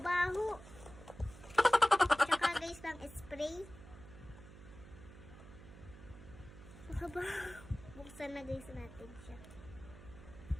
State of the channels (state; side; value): noise; right; hum, 17 dB below the sound